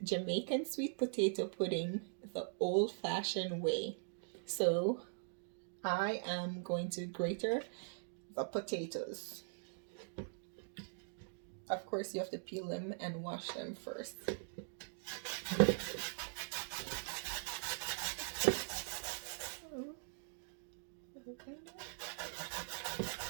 Jamaican sweet potato pudding the old-fashioned way. So I am going to grater the potatoes. Of course, you have to peel them and wash them first. Okay.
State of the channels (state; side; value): silent; left; digital silence